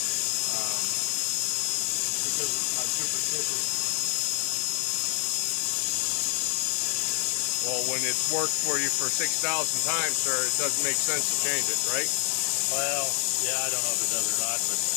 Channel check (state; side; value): quieter; right; 39.6 dB